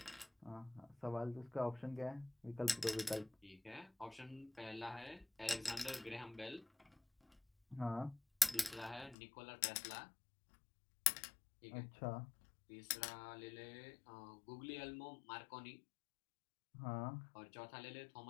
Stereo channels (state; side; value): drops out; right; at 9.2 s